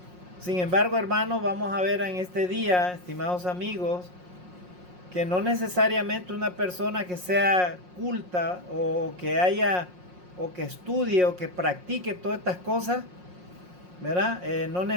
Sin embargo, hermanos, vamos a ver en este día, estimados amigos, que no necesariamente una persona que sea culta o que estudie o que practique todas estas cosas, ¿verdad? No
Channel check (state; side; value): late; left; 5.6 ms